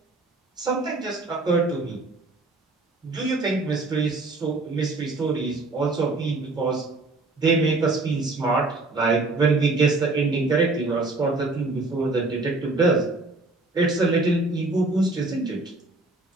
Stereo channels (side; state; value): left; quieter; 3.2 dB